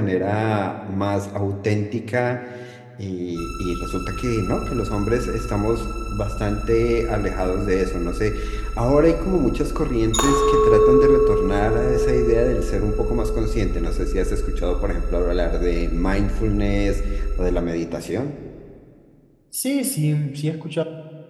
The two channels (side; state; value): both; identical; correlation 1.00